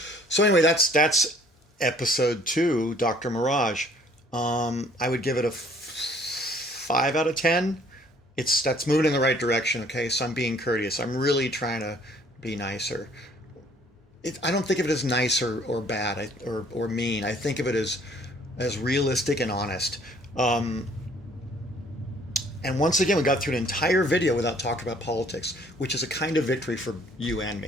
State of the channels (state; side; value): normal; both; correlation 0.58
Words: So anyway, that's episode 2, Dr. Mirage. I would give it a 5 out of 10. That's moving in the right direction. Okay, so I'm being courteous. I'm really trying to be nicer. I don't think of it as nice or bad or mean. I think of it as realistic and honest. And once again, we got through an entire video without talking about politics, which is a kind of victory for you and